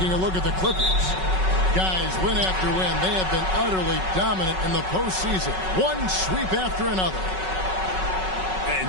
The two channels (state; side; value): late; left; 5.4 ms